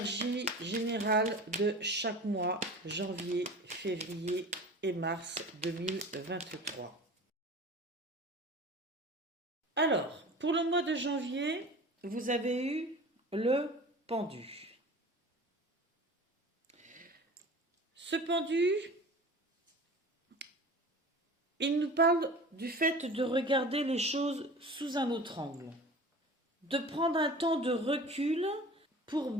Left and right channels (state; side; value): normal; both; correlation 0.38